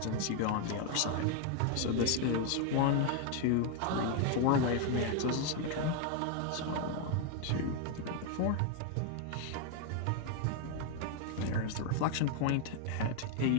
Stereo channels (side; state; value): both; different; correlation 0.01